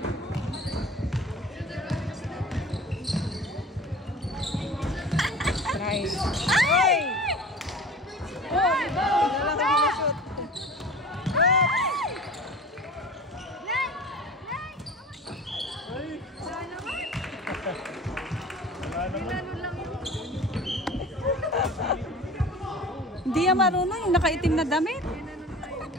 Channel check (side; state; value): both; normal; correlation 0.40